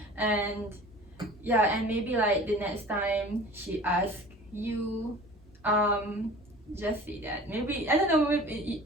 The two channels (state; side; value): normal; both; correlation 0.42